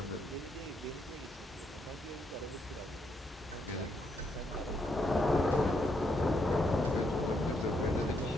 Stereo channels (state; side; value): normal; both; correlation 0.76